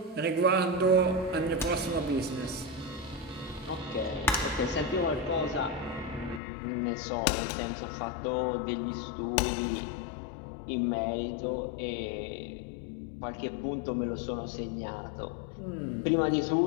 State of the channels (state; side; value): drops out; right; at 6.4 s